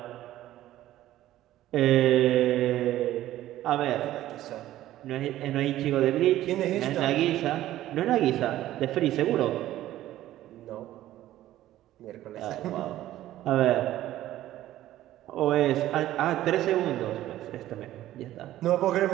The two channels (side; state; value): left; quieter; 14.1 dB